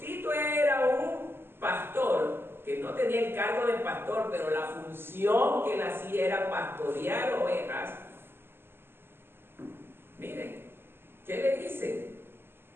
era un pastor que no tenía el cargo de pastor, pero la función que él hacía era pastorear ovejas. Miren, ¿qué le dice?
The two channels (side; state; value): left; late; 0.11 ms